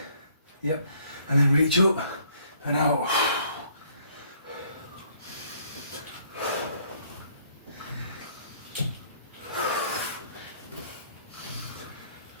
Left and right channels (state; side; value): inverted; both; correlation -0.63